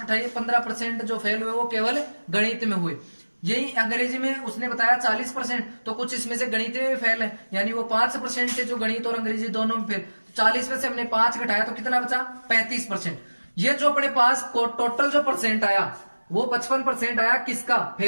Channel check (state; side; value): inverted; both; correlation -1.00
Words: घटाइए, 15% जो फेल हुए वो केवल गणित में हुए। यही अंग्रेजी में उसने बताया 40%, तो कुछ इसमें से गणित में फेल है, यानी वो 5% से जो गणित और अंग्रेजी दोनों में फेल। 40 में से हमने 5 घटाया तो कितना बचा, 35%। ये जो अपने पास टोटल जो परसेंट आया वो 55% आया, किसका,